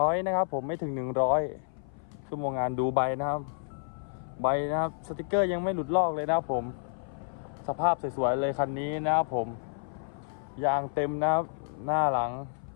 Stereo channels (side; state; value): right; silent; 56 dB below the other